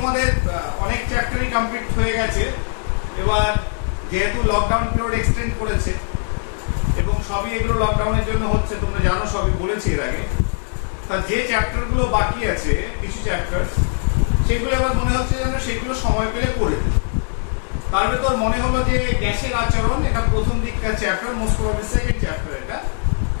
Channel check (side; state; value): right; silent; 64 dB below the other